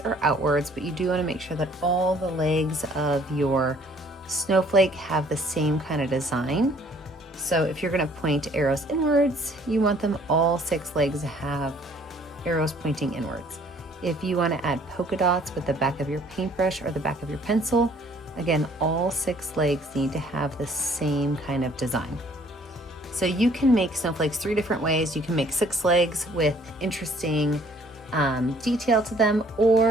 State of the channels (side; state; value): both; normal; correlation 0.59